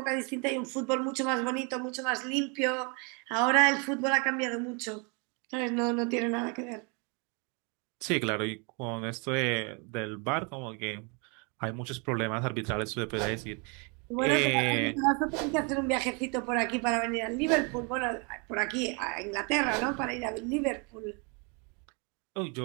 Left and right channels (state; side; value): quieter; left; 33.4 dB